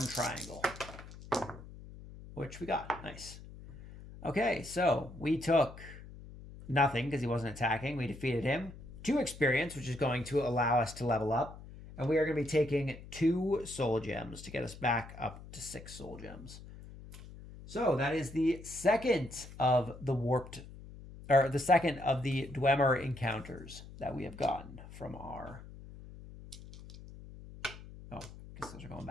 triangle, which we got. Nice. Okay, so we took nothing because he wasn't attacking. We defeated him. 2 experience, which is going to allow us to level up. And we are going to be taking 2 soul gems to get us back up to 6 soul gems. So that is the second of the the second of the Dwemer encounters that we have gotten from our... Oh, I guess those are going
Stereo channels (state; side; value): noise; left; hum, 15 dB below the sound